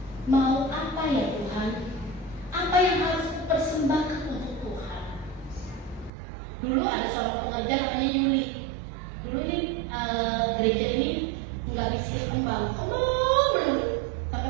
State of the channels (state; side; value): drops out; left; at 6.1 s